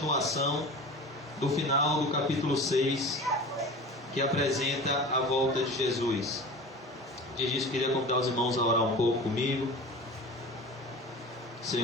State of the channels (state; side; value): normal; both; correlation 0.36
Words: do final do capítulo 6, que apresenta a volta de Jesus. Antes disso, queria convidar os irmãos a orar um pouco comigo.